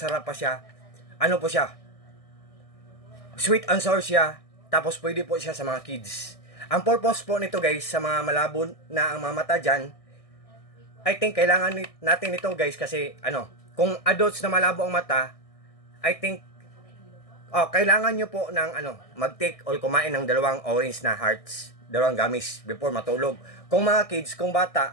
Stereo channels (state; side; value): late; right; 1.6 ms